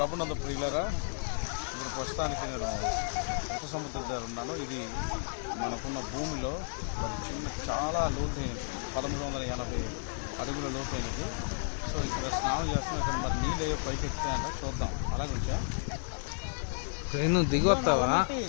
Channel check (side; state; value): right; silent; 56 dB below the other